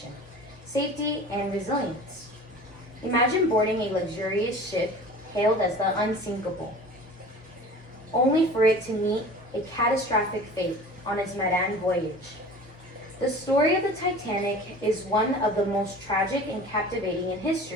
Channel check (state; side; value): normal; both; correlation 0.40